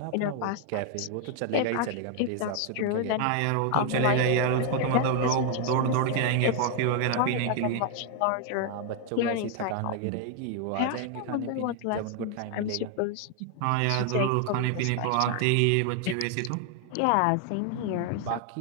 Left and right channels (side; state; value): both; different; correlation 0.00